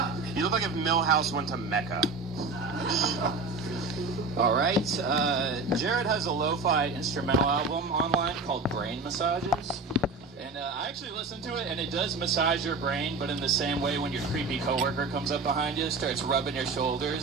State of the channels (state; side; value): quieter; left; 3.8 dB